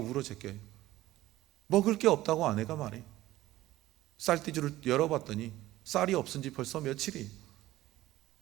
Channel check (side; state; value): left; quieter; 15.9 dB